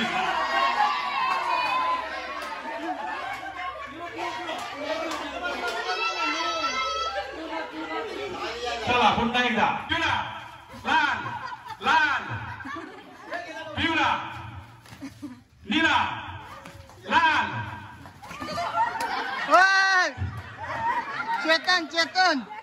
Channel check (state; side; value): identical; both; correlation 1.00